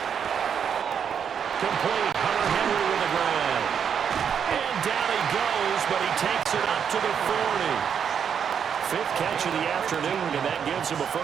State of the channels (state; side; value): quieter; left; 7.6 dB